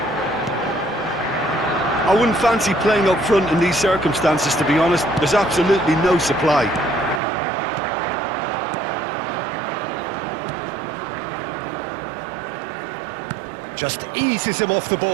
I wouldn't fancy playing up front in these circumstances, to be honest. There's absolutely no supply. Just eases him off the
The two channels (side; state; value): left; drops out; at 7.2 s